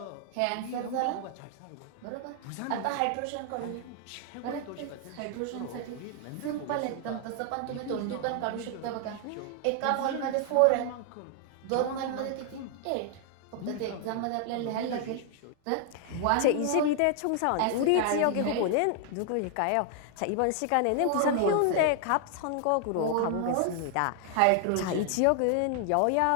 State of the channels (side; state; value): both; different; correlation 0.00